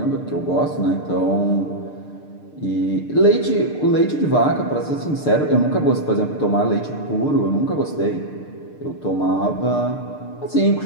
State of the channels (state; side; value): late; right; 6.7 ms